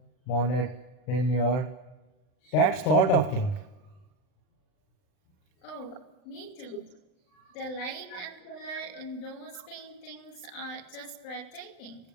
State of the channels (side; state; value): right; late; 39 ms